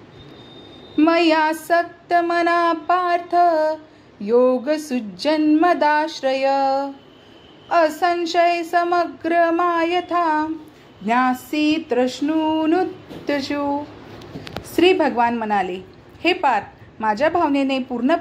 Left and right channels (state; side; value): identical; both; correlation 1.00